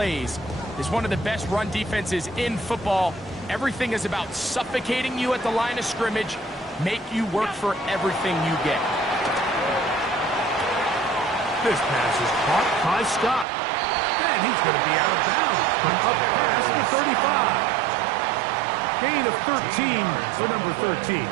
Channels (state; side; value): drops out; left; at 13.5 s